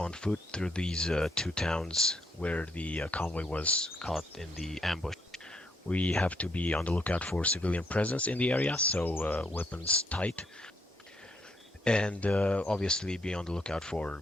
foot through these two towns where the convoy was caught in the ambush. We have to be on the lookout for civilian presence in the area, so weapons tight, and obviously be on the lookout for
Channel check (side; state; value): both; normal; correlation 0.73